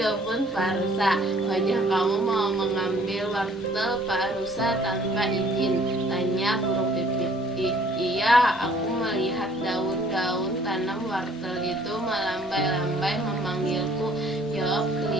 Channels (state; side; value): normal; both; correlation 0.58